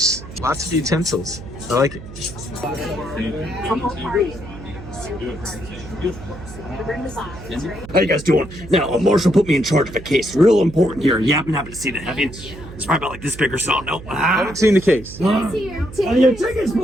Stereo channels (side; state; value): right; noise; hum, 14 dB below the sound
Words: Lots of utensils. I like it. How you guys doing? Now, a marshal put me in charge of a case. Real important here. You happen to see that, have you? It's probably about like this big or so. No. I haven't seen the case. Your tickets,